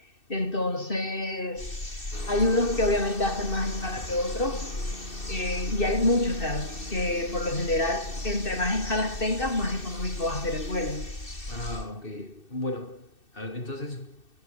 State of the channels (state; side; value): late; right; 2.6 ms